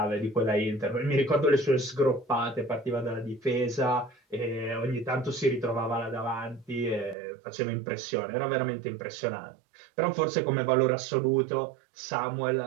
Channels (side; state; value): left; drops out; at 7.2 s